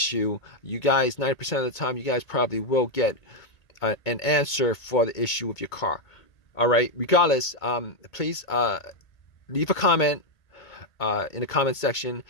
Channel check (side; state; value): right; late; 1.8 ms